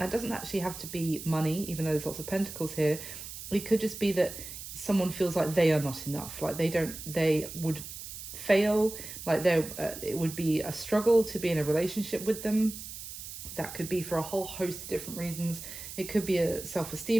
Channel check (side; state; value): right; noise; hiss, 11 dB below the sound